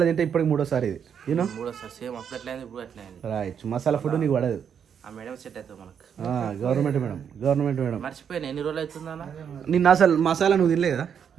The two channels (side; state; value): left; quieter; 7.8 dB